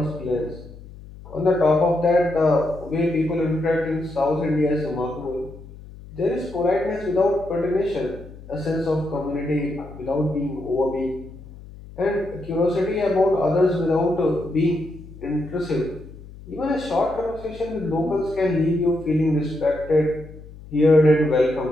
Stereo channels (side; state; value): left; noise; hum, 17 dB below the sound